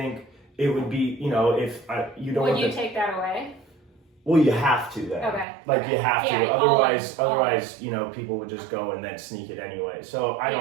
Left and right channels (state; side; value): drops out; left; at 5.5 s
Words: it would be, if you don't. Would you take that away? Well, you have to then. Okay. Like you have to. Yeah, Otherwise, people would just go and then sneak it anyway. So I